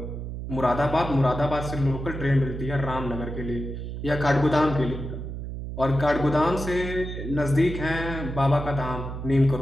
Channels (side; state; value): right; noise; hum, 7 dB below the sound